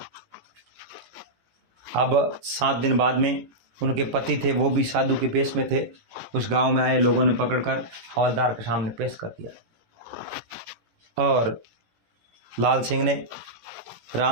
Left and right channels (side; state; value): left; late; 17 ms